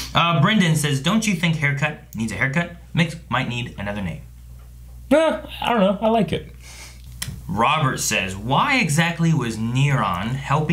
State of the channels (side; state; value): both; identical; correlation 1.00